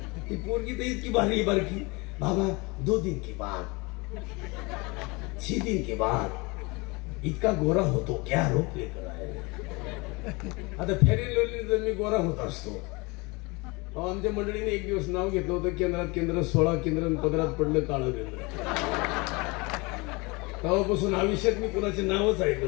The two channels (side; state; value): right; quieter; 26.5 dB